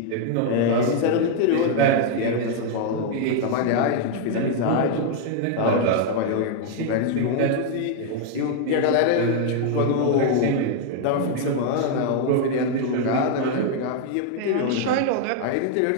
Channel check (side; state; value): both; different; correlation 0.00